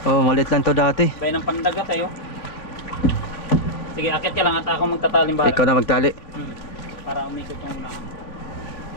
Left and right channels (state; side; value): late; right; 3.3 ms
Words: Oh, maliit lang to dati. Bayan ng pandagat tayo. Sige, akit ka lang at ako magtataling bala. Ikaw na magtali. Para umikot yung unahan.